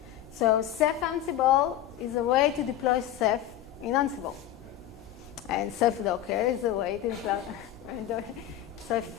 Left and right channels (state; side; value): quieter; right; 11.8 dB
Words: So Ceph Ansible is a way to deploy Ceph in Ansible, and Ceph Docker is a way to deploy Ceph